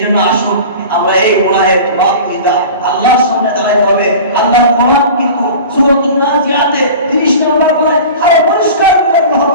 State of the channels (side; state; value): both; inverted; correlation -0.37